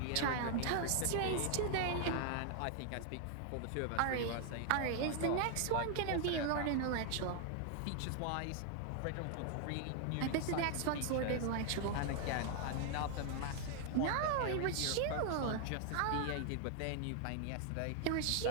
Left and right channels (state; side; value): different; both; correlation 0.00